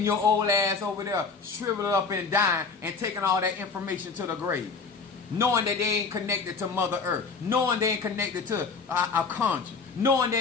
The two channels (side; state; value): right; quieter; 4.8 dB